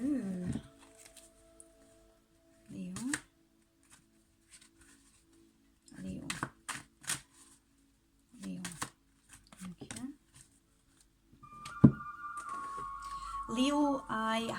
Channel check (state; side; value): identical; both; correlation 1.00